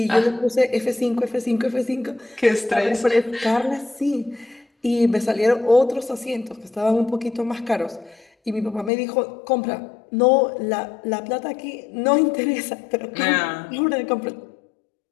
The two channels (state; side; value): drops out; right; at 8.9 s